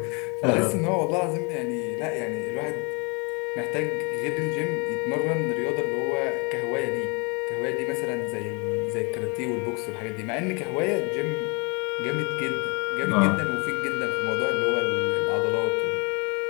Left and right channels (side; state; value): right; quieter; 31.6 dB